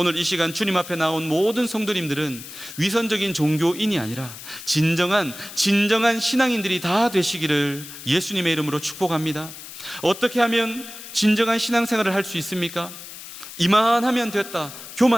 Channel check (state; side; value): noise; left; hiss, 13 dB below the sound